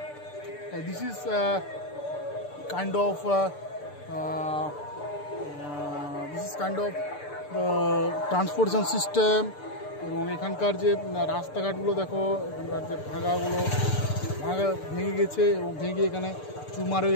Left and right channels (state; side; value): late; right; 6.8 ms